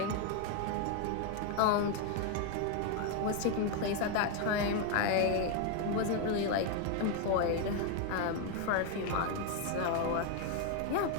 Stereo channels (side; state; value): both; different; correlation 0.01